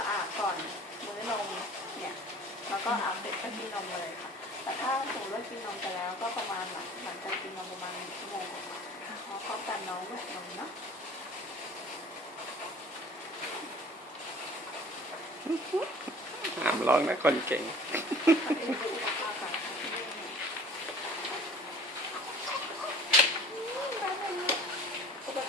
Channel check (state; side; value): normal; both; correlation 0.46